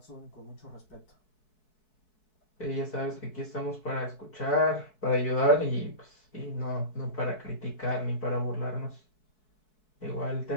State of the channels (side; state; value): right; late; 4.7 ms